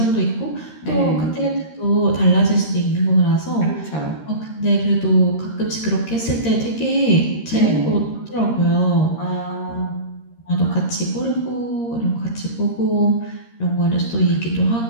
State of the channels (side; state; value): right; late; 13 ms